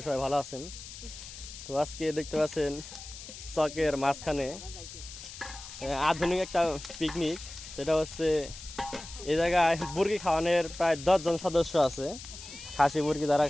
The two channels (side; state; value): left; noise; hiss, 13 dB below the sound